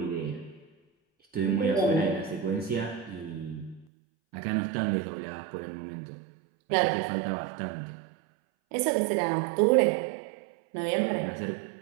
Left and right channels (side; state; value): left; drops out; at 3.9 s